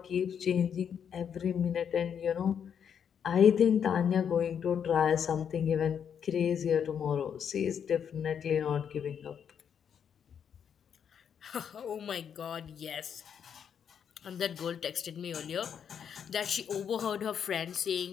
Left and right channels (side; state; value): right; quieter; 7.9 dB